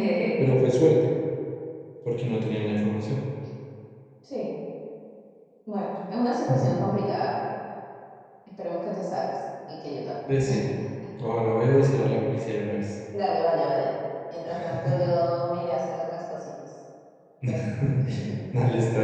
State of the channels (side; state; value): both; identical; correlation 1.00